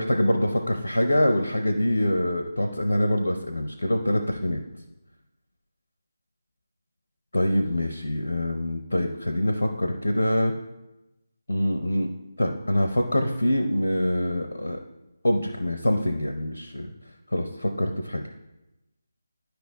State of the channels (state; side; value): inverted; both; correlation -0.96